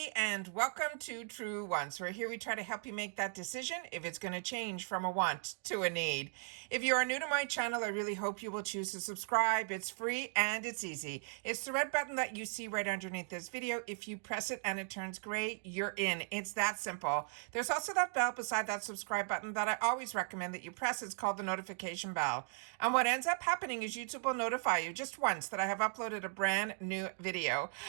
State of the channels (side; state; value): left; silent; 53 dB below the other